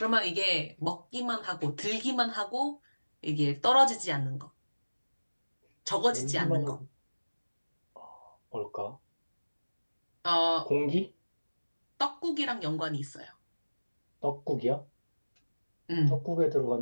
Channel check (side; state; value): both; inverted; correlation -1.00